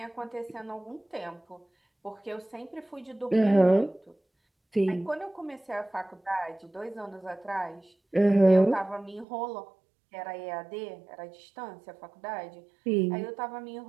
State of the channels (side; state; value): left; drops out; at 9.2 s